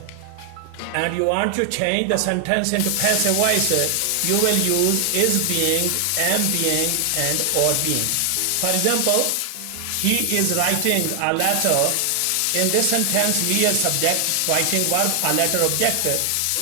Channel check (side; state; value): both; different; correlation 0.00